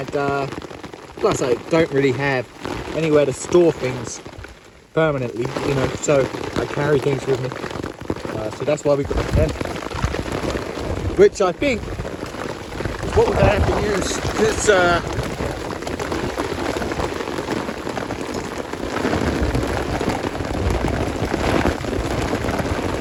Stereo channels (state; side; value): identical; both; correlation 1.00